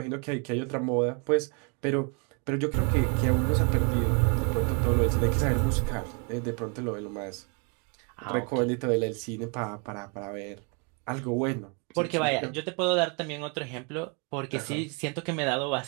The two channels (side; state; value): left; quieter; 35.0 dB